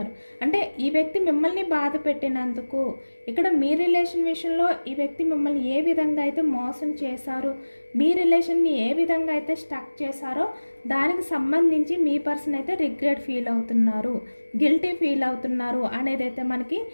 అంటే ఈ వ్యక్తి మిమ్మల్ని బాధ పెట్టినందుకు, ఇక్కడ మీ రిలేషన్ విషయంలో ఈ వ్యక్తి మిమ్మల్ని ఏ విధంగా అయితే మోసం చేశారు, మీ రిలేషన్ని ఏ విధంగా అయితే స్టక్ చేశారో దానికి సంబంధించి మీ పర్సన్ అయితే రిగ్రెట్ ఫీల్ అవుతున్నారు, గిల్టీ ఫీల్ అవుతున్నారు అనేది అయితే మనకి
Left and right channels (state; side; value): inverted; both; correlation -1.00